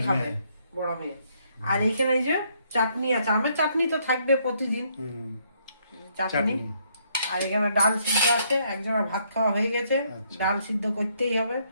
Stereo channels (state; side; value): inverted; both; correlation -0.70